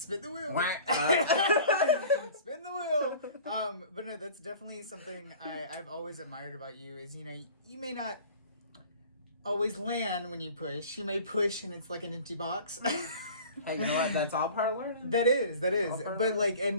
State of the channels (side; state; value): both; inverted; correlation -0.44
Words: the wheel. Spin the wheel. But no, that's definitely something I've always admired about you is, you know, you may not always land when you push. You may push and it's like an empty box. Hey, you know what? That's all part of learning. That is. But like,